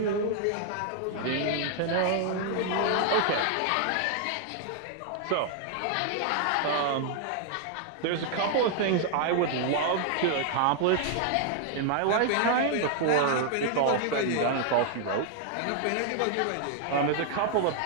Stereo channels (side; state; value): both; different; correlation 0.00